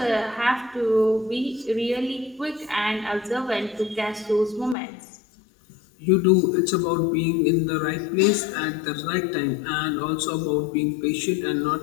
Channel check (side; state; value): right; drops out; at 4.8 s